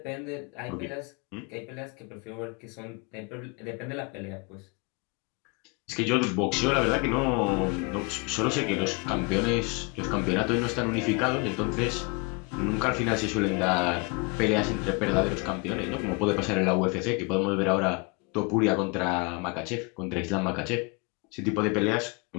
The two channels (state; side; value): quieter; right; 29.3 dB